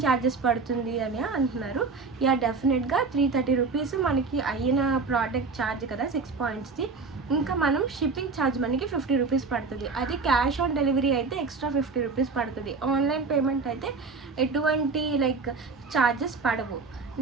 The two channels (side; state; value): left; quieter; 4.4 dB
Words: ఛార్జెస్ పడుతుంది అని అంటున్నారు. యా డెఫినెట్గా 330 రూపీస్ మనకి అయిన ప్రోడక్ట్ ఛార్జ్ కదా 6 పాయింట్స్ది. ఇంకా మనం షిప్పింగ్ ఛార్జ్ మనకి 50 రూపీస్ పడుతుంది. అది క్యాష్ ఆన్ డెలివరీ అయితే ఎక్స్ట్రా 50 రూపీస్ పడుతుంది. ఆన్లైన్ పేమెంట్ అయితే ఎటువంటి లైక్ ఛార్జెస్ పడవు.